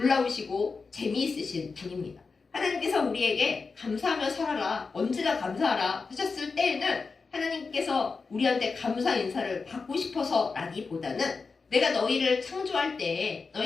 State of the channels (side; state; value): right; quieter; 4.6 dB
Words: 재미있으신 분입니다. 하나님께서 우리에게 감사하며 살아라, 언제나 감사하라 하셨을 때에는 하나님께서 우리한테 감사 인사를 받고 싶어서 라기보다는 내가 너희를 창조할 때